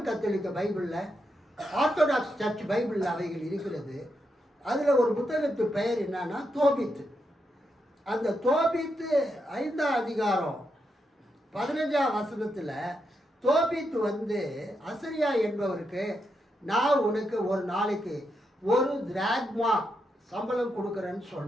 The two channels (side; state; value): both; normal; correlation 0.83